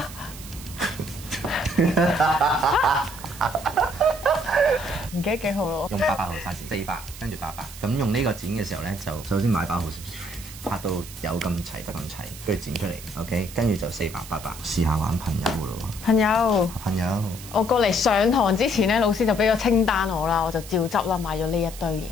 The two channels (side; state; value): right; noise; hiss, 15 dB below the sound